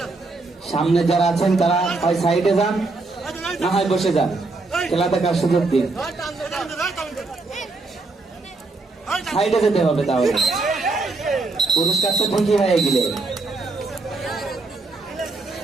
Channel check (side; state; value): left; quieter; 3.5 dB